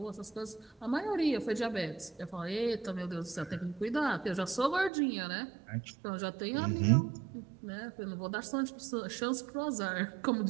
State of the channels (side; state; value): left; drops out; at 4.9 s